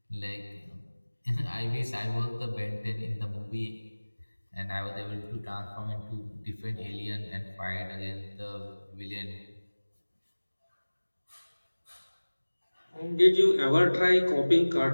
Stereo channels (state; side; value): inverted; both; correlation -1.00